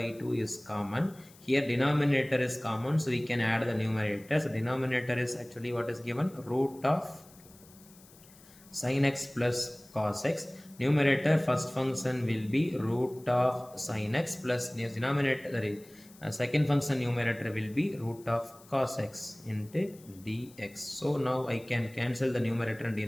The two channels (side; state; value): left; noise; hiss, 24 dB below the sound